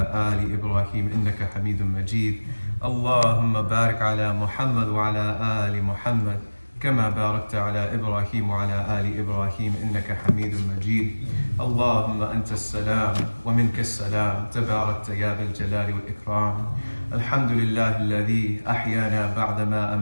آل إبراهيم إنك حميد مجيد. اللهم بارك على محمد وعلى آل محمد كما باركت على إبراهيم وعلى آل إبراهيم إنك حميد مجيد. اللهم أنت السلام ومنك السلام تباركت يا ذا الجلال والإكرام. الحمد لله الذي أحيانا بعدما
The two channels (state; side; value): inverted; both; correlation -1.00